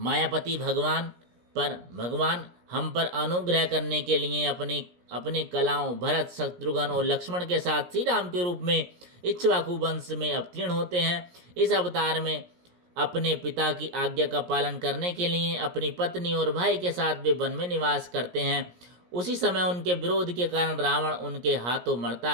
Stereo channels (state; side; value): late; left; 17 ms